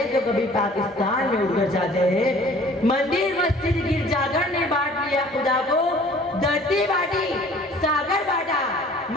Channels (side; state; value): both; normal; correlation 0.51